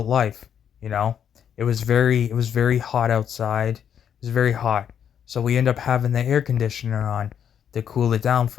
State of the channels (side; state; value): right; quieter; 8.6 dB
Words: life. You know, it was very hot outside. It was very hot, so we end up having the air conditioner on to cool it down